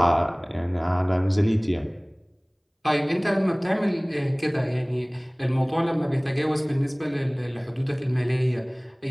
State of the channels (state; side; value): identical; both; correlation 1.00